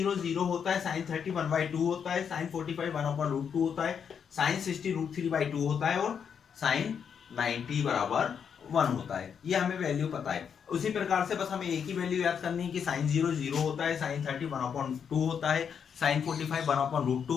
0 होता है, साइन 30 1/2 होता है, साइन 45 1/√2 होता है, साइन 60 √3/2 होता है और साइन 90 बराबर 1 होता है। ये हमें वैल्यू पता है। उसी प्रकार से बस हमें एक ही वैल्यू याद करनी है कि साइन 0 0 होता है, साइन 30 1/2 होता है, साइन 45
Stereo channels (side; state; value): right; quieter; 7.3 dB